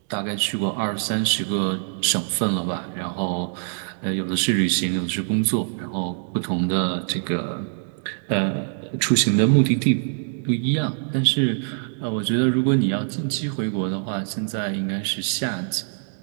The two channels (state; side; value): silent; left; digital silence